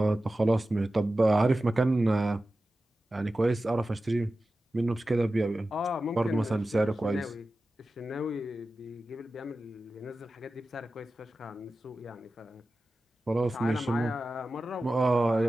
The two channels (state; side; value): normal; both; correlation 0.94